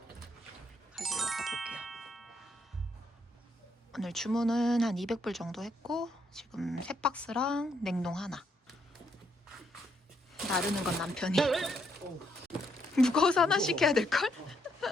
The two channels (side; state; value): both; normal; correlation 0.75